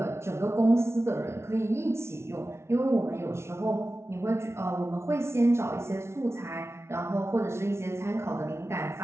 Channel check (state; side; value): late; left; 0.13 ms